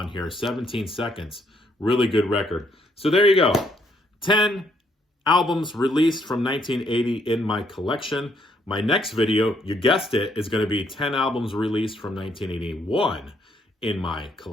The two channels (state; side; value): normal; both; correlation 0.71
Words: here, 17 Seconds. Really good record. So there you go. 10 albums released from 1980 in my collection. My next video, you guessed it, is going to be 10 albums released from 1981 in my